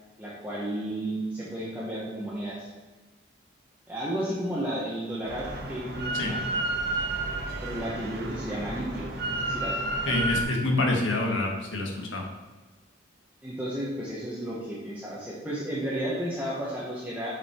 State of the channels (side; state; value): both; normal; correlation 0.42